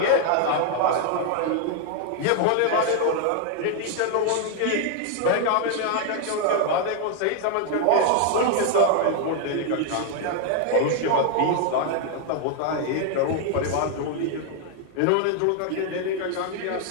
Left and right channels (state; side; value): different; both; correlation 0.00